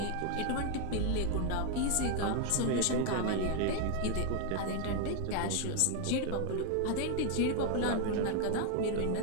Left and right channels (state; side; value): different; both; correlation 0.01